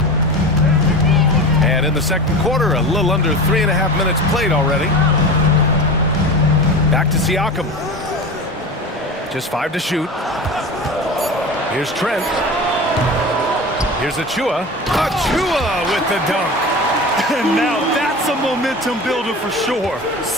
And in the second quarter, a little under 3.5 minutes played already. Back to Siakam. Just 5 to shoot. Here's Trent. Here's Achua. Achua with the dunk. And now that's a momentum builder for sure.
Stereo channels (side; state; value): both; normal; correlation 0.30